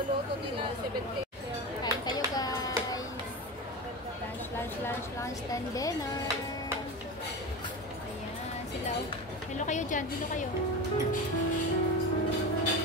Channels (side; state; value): both; normal; correlation 0.25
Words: nila 70. Kain kayo guys. Lunch, then dinner. Ayan, sila. Hello kayo dyan, hello kayo.